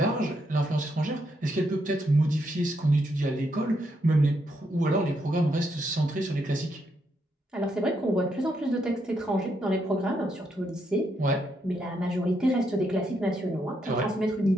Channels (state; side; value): normal; both; correlation 0.78